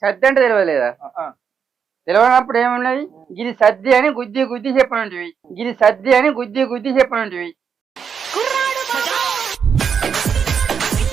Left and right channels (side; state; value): left; quieter; 6.8 dB